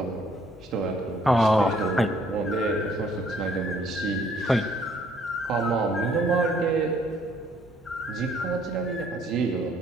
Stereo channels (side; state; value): both; normal; correlation 0.64